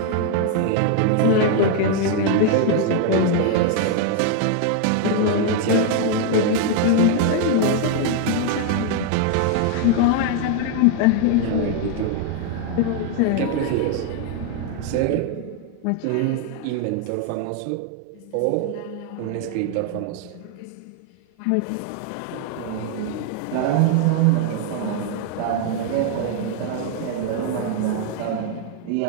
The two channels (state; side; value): different; both; correlation 0.00